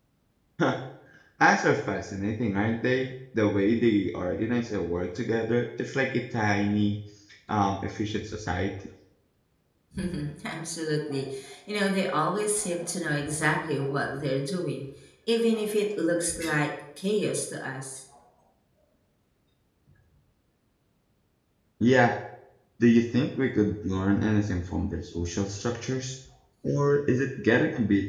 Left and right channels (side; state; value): both; identical; correlation 1.00